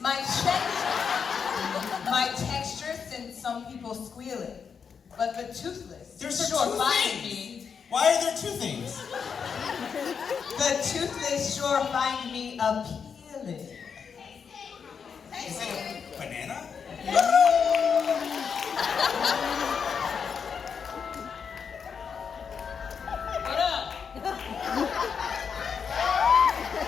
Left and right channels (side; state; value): right; quieter; 6.4 dB